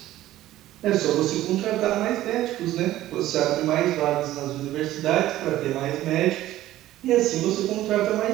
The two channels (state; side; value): quieter; left; 14.7 dB